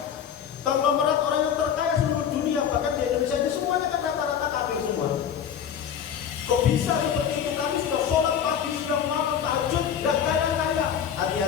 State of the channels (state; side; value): quieter; right; 8.5 dB